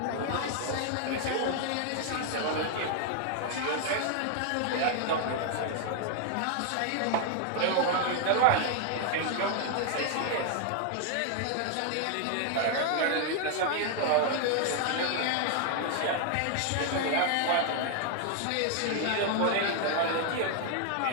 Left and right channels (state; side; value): different; both; correlation 0.00